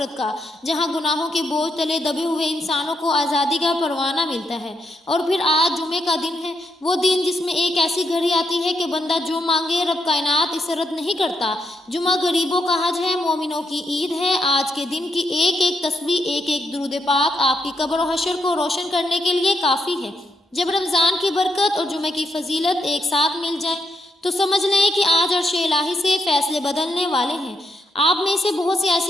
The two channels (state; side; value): normal; both; correlation 0.80